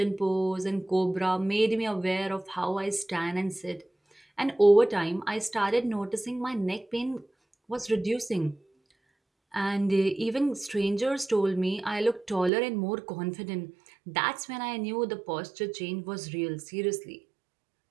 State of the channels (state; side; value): drops out; left; at 12.5 s